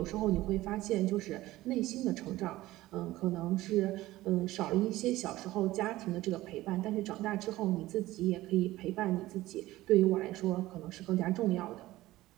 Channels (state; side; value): quieter; left; 16.9 dB